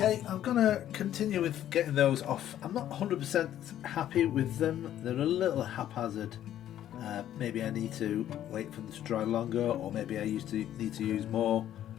Okay, I'm going to continue with getting those off. I'm not 100% happy with them. They're a little haphazard. Maybe I need to wait for them to dry longer, or maybe I need to use more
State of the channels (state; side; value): quieter; right; 11.6 dB